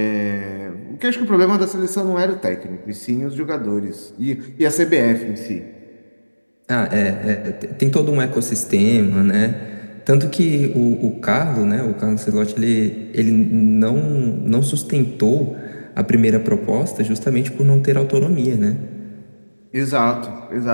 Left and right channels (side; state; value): both; inverted; correlation -1.00